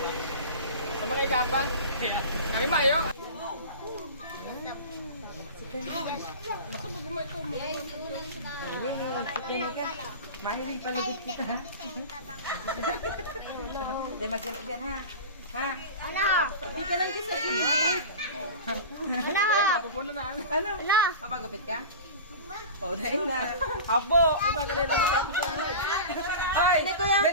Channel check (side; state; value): both; inverted; correlation -0.32